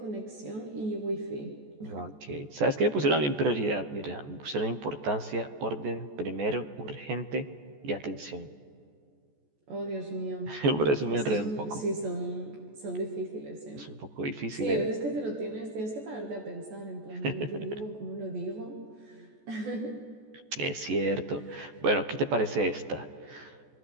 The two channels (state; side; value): late; left; 14 ms